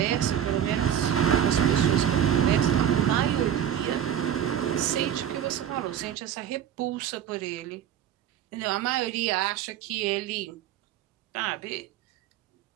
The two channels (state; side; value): quieter; left; 9.8 dB